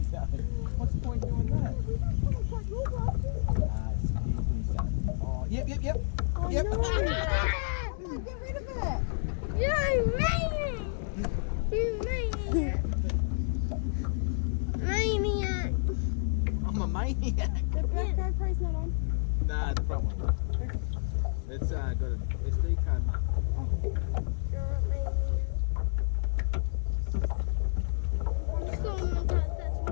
What's the point doing that? Oh, yep. Oh, Yep. No. Get rid of it. You maniac. Maniac. I'm a maniac. The back GoPro's not on. Nah, the front one. It's got an SD card. You're a maniac. I'm still on my card, that's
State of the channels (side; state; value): right; silent; digital silence